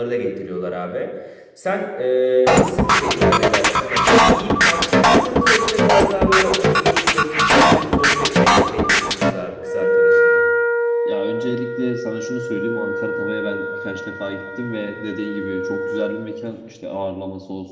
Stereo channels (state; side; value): identical; both; correlation 1.00